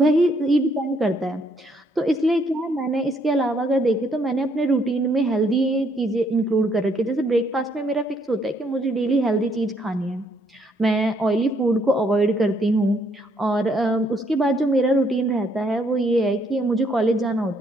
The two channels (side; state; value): both; normal; correlation 0.69